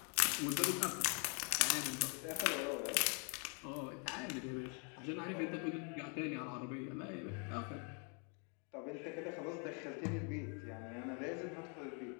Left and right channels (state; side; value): quieter; right; 38.3 dB